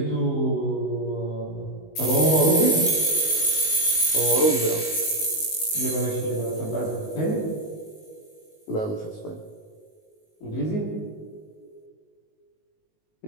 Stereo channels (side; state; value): right; late; 19 ms